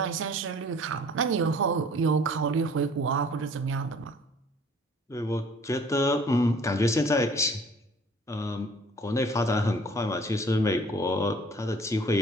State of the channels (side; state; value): both; normal; correlation 0.52